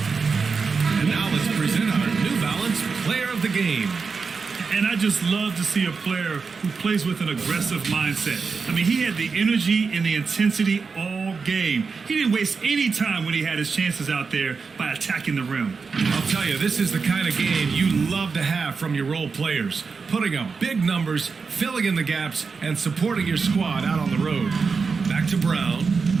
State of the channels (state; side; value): quieter; left; 5.0 dB